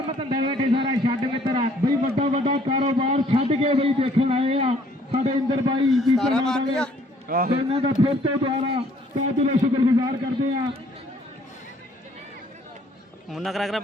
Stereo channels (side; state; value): both; normal; correlation 0.62